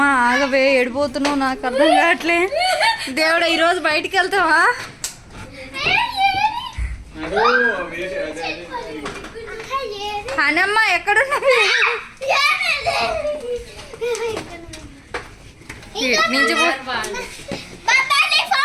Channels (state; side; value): identical; both; correlation 1.00